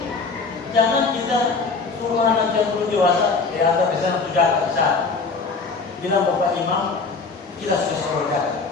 Jangan kita suruh anak yang belum dewasa, antar ke sana tuh jaga ke sana. Bilang Bapak Imam, kita sudah suruh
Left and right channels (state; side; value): quieter; right; 4.3 dB